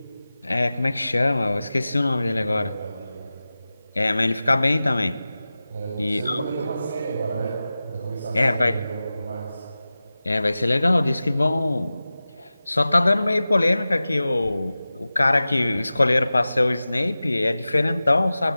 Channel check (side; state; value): both; inverted; correlation -0.96